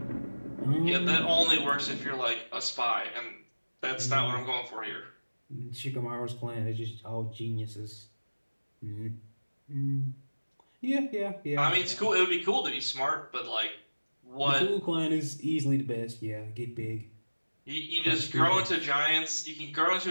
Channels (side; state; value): both; inverted; correlation -1.00